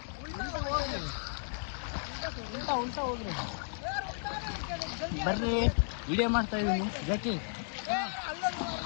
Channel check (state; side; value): silent; right; digital silence